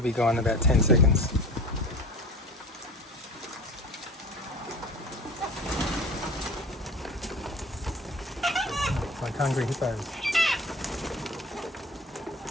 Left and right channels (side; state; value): both; normal; correlation 0.37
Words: be gone in about 10 seconds. It's like hungry hippos.